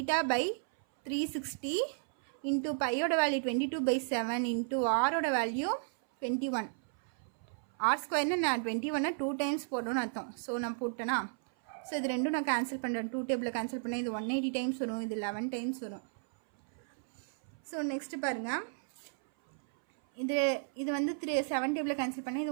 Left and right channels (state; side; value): silent; left; 55 dB below the other